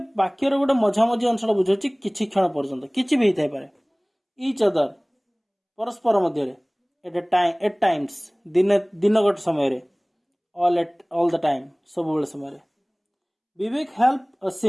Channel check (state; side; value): identical; both; correlation 1.00